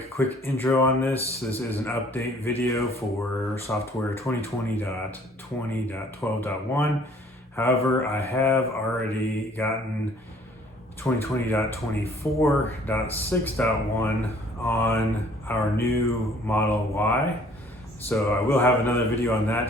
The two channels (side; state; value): both; normal; correlation 0.57